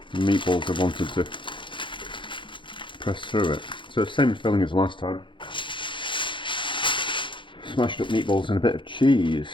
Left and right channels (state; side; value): late; right; 0.24 ms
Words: meatballs have wanted to press through it. So same filling as last time. Smashed up meatballs and a bit of cheese.